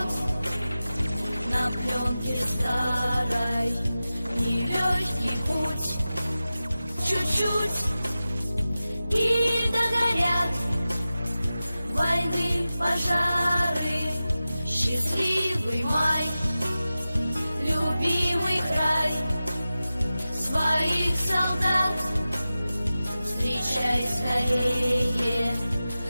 на пленке старой, нелегкий путь, чуть-чуть, и догорят войны, пожары, счастливый май, любимый край, своих солдат встречай скорее,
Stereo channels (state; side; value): inverted; both; correlation -0.95